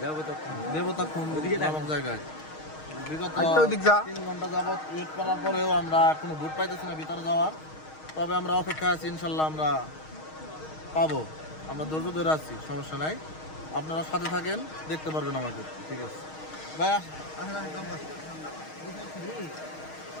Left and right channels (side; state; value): right; late; 6.4 ms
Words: দেবতাখুন্ড নামক জায়গায়। বিগত 3 ঘন্টা যাবত ওয়েট করার পরেও আমরা কোনো বুট পাইতেছি না ভিতরে যাওয়ার। তবে আমরা অপেক্ষা আছি, ইনশাল্লাহ আমরা পাবো। আমরা ধৈর্য ধরে আছি, সমস্যা নাই। আপনারা সাথে থাকেন, দেখতে পারবেন আমাদের। ঠিক আছে ভাইয়া,